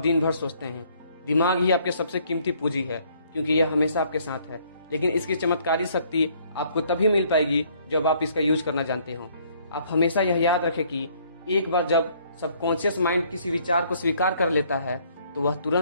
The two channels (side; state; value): both; inverted; correlation -0.63